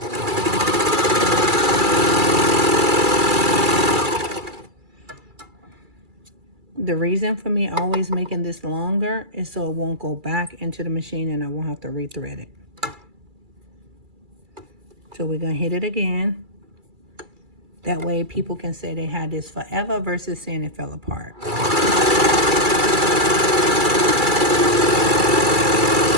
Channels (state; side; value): late; left; 2.3 ms